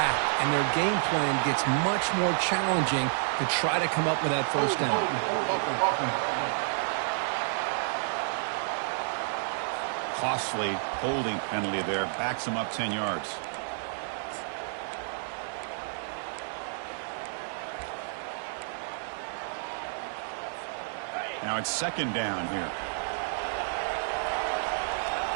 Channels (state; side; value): silent; left; 58 dB below the other